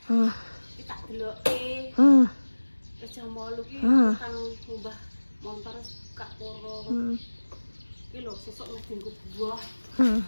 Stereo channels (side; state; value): both; inverted; correlation -1.00